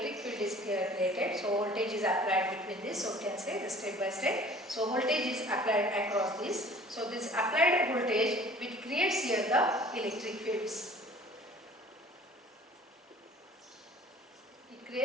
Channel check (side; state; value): both; normal; correlation 0.49